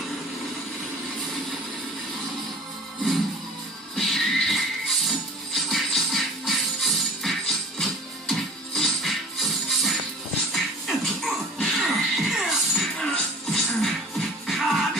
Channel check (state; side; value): normal; both; correlation 0.44